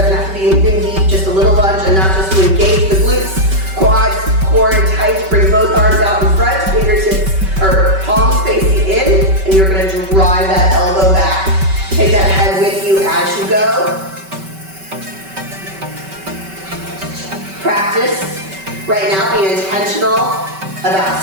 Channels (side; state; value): left; late; 5.2 ms